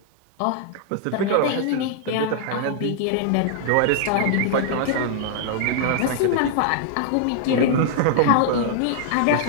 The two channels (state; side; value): different; both; correlation -0.01